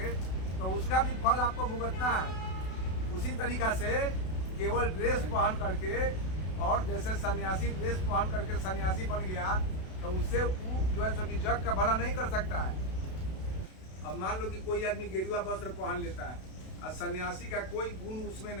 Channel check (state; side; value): late; right; 32 ms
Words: तो उसका भी फल आपको भुगतना है। उसी तरीका से केवल ड्रेस पहन करके, और जैसे सन्यासी ड्रेस पहन करके सन्यासी बन गया तो उससे वो जो है सो कि जग का भला नहीं कर सकता है। अब मान लो कि कोई आदमी गेरुआ वस्त्र पहन लेता है और सन्यासी का कोई गुण उसमें